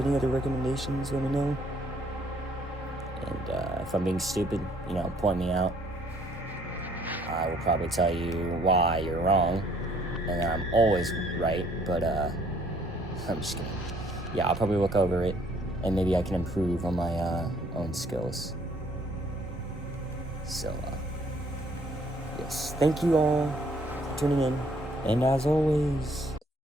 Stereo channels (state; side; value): normal; both; correlation 0.63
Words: any other recommendations, let me know. And if I'm being stupid, you know, point me out. I will probably tell you why you're wrong, and I'm always right, but I'm just kidding. Yeah, I'll probably look over it, and maybe I can improve on my own skills. So, yes, thank you all for tuning in, and as always,